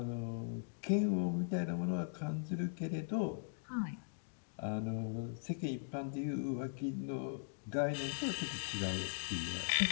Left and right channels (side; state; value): right; silent; digital silence